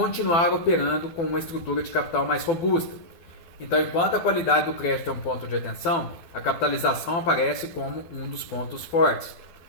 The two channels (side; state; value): right; late; 12 ms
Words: operando com uma estrutura de capital mais robusta. Então, enquanto a qualidade do crédito é um ponto de atenção, a capitalização aparece como um dos pontos fortes.